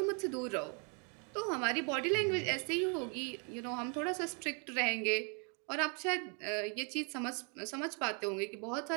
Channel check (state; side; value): quieter; left; 37.7 dB